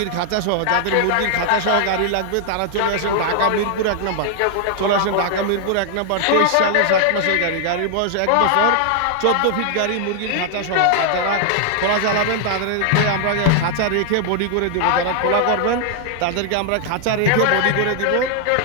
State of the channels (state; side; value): different; both; correlation 0.00